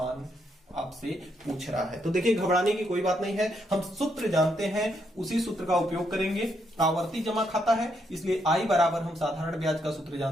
आपसे पूछ रहा है। तो देखिए, घबराने की कोई बात नहीं है, हम सूत्र जानते हैं, उसी सूत्र का उपयोग करेंगे। आवर्ती जमा खाता है, इसलिए आई बराबर हम साधारण ब्याज का सूत्र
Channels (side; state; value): both; normal; correlation 0.77